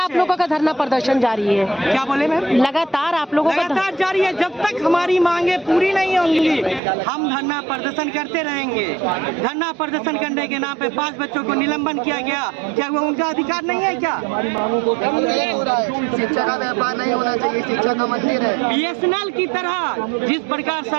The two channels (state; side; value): drops out; left; at 6.8 s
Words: लोगों का धरना प्रदर्शन जारी है? क्या बोले मैम? लगातार आप लोगों का लगातार जारी है। जब तक हमारी मांगे पूरी नहीं होंगी हम धरना प्रदर्शन करते रहेंगे। धरना प्रदर्शन करने के नाम पे 5 बच्चों को निलंबन किया गया, क्या वो उनका अधिकार नहीं है? क्या शिक्षा का व्यापार नहीं होना चाहिए, शिक्षा का मंदिर है। बीएसएनएल की तरह जिस प्रकार